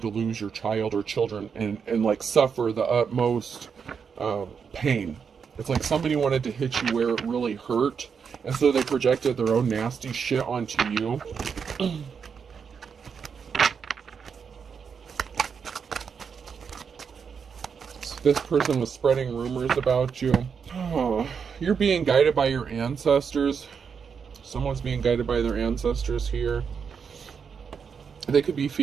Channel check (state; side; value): quieter; left; 6.4 dB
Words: lose your child or children and like, suffer the utmost pain. It's like somebody wanted to hit you where it really hurt, and so they projected their own nasty shit onto you. So this person was spreading rumors about you. Oh, you're being guided by your ancestors. Someone's being guided by their ancestors here. They could be